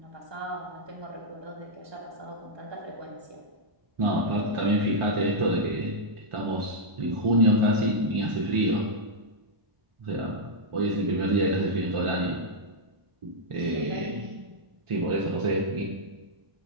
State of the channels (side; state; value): left; late; 1.4 ms